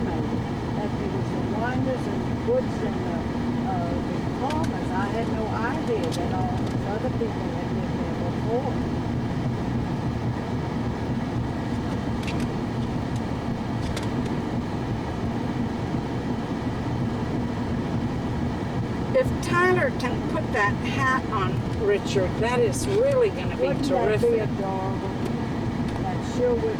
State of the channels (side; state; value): both; identical; correlation 1.00